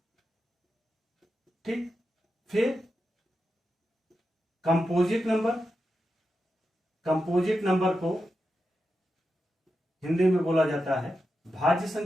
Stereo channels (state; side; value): normal; both; correlation 0.88